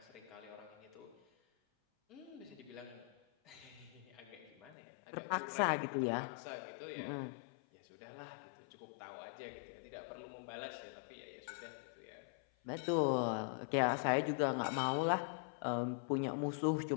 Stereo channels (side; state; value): right; drops out; at 4.8 s